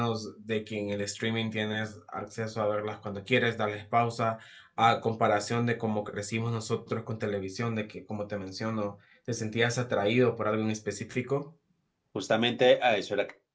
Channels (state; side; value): identical; both; correlation 1.00